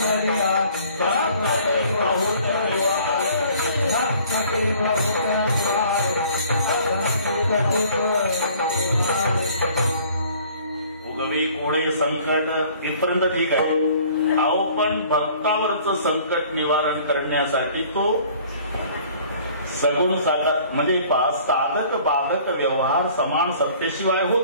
उगवी कोडे संकट इथपर्यंत ठीक आहे. अहो पण भक्तावरचं संकट निवारण करण्यासाठी तो सगुण साकार म्हणजे साधक बाधक व्यवहार समान सत्तेशिवाय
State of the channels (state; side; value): inverted; both; correlation -0.53